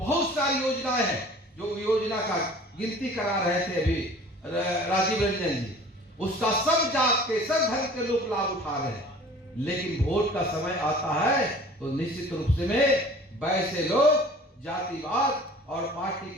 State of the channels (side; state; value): both; normal; correlation 0.46